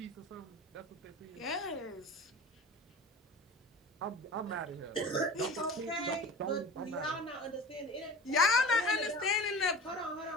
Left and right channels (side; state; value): both; normal; correlation 0.36